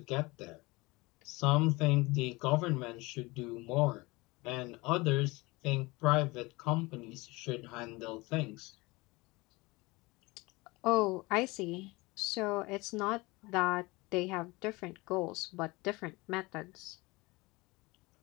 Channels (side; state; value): right; quieter; 23.4 dB